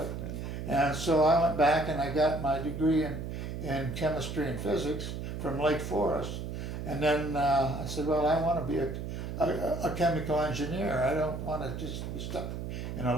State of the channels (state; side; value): noise; right; hum, 5 dB below the sound